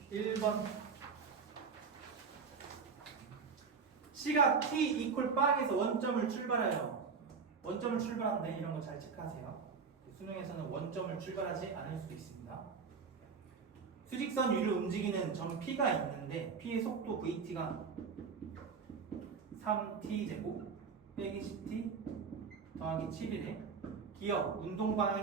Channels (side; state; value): left; quieter; 5.5 dB